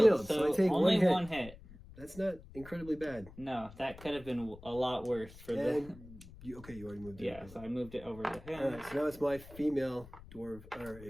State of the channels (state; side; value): noise; left; rumble, 18 dB below the sound